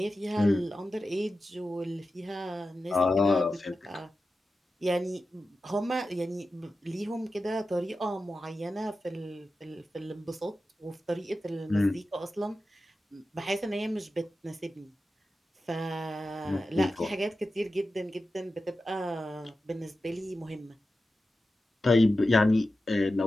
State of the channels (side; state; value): both; normal; correlation 0.92